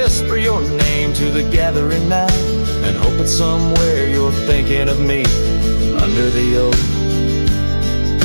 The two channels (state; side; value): inverted; both; correlation -1.00